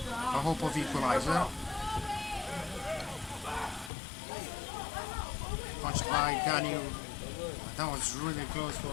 a hope of equalizer. Punched by Ganu. That was really close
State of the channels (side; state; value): right; drops out; at 3.9 s